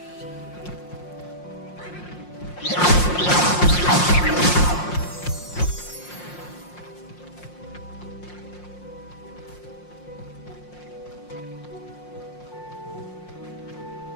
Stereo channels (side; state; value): right; late; 5.6 ms